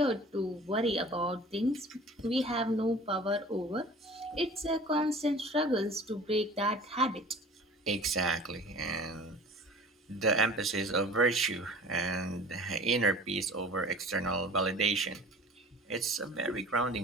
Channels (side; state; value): both; normal; correlation 0.43